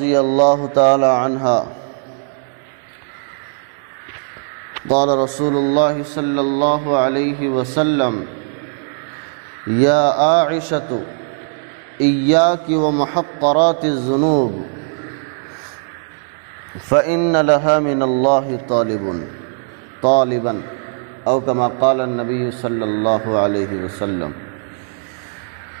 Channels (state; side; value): silent; left; digital silence